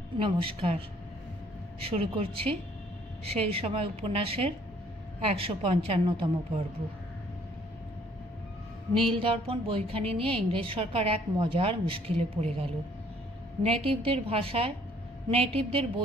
নমস্কার। শুরু করছি সেই সময় উপন্যাসের ১৫৫তম পর্ব। নীল দর্পণ বইখানি নিয়ে ইংরেজ সরকার এক মজার মুশকিলে পড়ে গেল। নেটিভদের ভাষায়, নেটিভদের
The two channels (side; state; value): both; normal; correlation 0.61